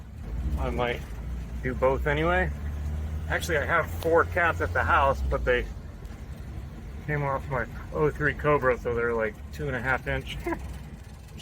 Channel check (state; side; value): identical; both; correlation 1.00